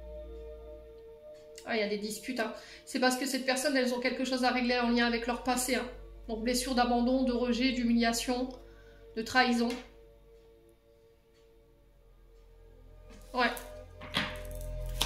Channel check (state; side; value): identical; both; correlation 1.00